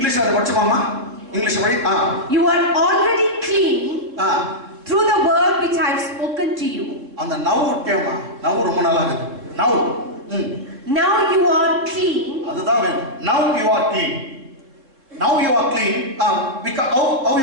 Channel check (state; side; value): late; left; 3.7 ms